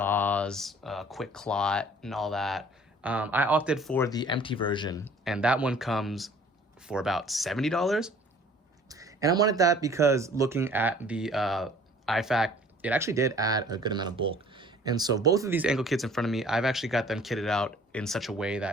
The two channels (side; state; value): both; normal; correlation 0.52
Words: quick clot, and all that. I opted for the empty version, and that one comes for about $70. And I wanted that because looking at the IFAK, it actually did add a good amount of bulk. And so both of these ankle kits in front of me, I've actually got them kitted out in such a way